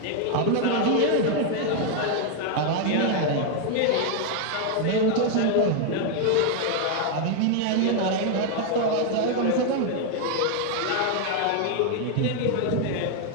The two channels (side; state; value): both; different; correlation 0.01